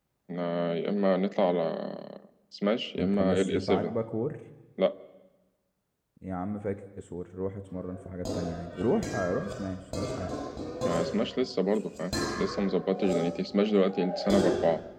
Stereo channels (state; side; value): identical; both; correlation 1.00